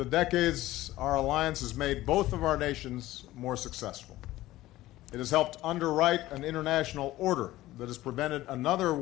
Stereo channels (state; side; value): quieter; right; 16.3 dB